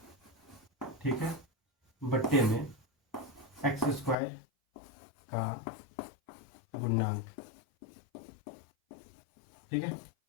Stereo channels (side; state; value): right; drops out; at 4.2 s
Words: ठीक है, बट्टे में x स्क्वायर का गुणांक। ठीक है,